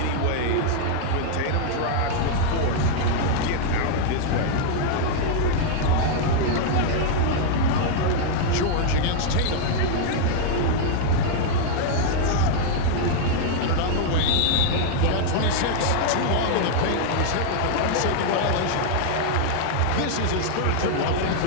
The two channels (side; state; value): both; different; correlation 0.00